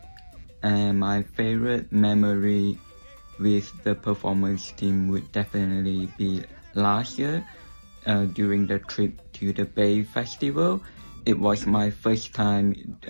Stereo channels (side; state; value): both; inverted; correlation -1.00